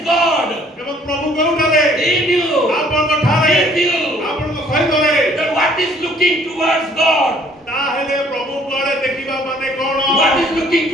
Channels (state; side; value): normal; both; correlation 0.59